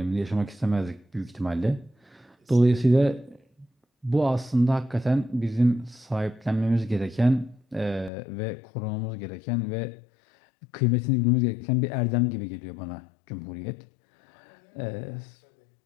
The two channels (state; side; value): drops out; right; at 8.1 s